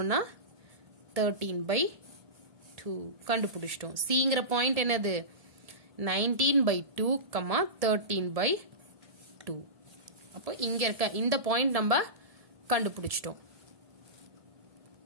13 by 2 கண்டுபிடிச்சிட்டோம். cங்கிற பாயிண்ட் என்னது? 19 by 2, 13 by 2. அப்போ இங்க இருக்க இந்த பாயிண்ட் நம்ம கண்டுபிடிச்சிட்டோம்.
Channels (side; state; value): left; late; 1.7 ms